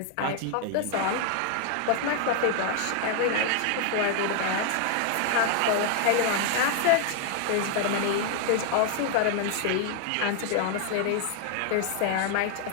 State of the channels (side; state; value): both; different; correlation 0.00